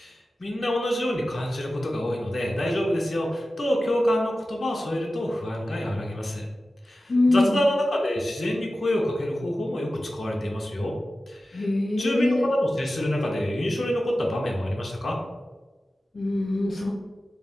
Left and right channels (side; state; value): both; normal; correlation 0.95